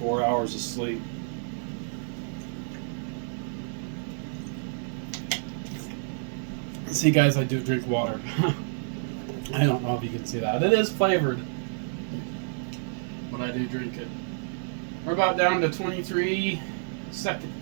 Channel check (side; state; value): left; silent; digital silence